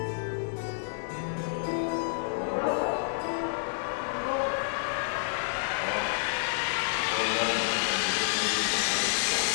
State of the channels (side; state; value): right; silent; digital silence